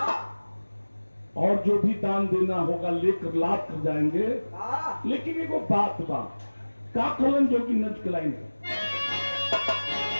और जो भी दान देना होगा लेकर लाद कर जाएंगे। लेकिन एगो बात बा का कहलन जो कि नच के लाइन है।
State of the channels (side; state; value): both; inverted; correlation -1.00